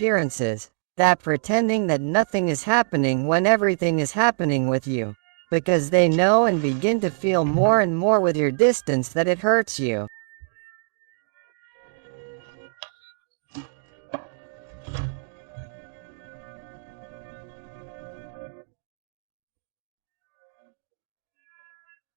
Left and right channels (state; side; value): silent; left; digital silence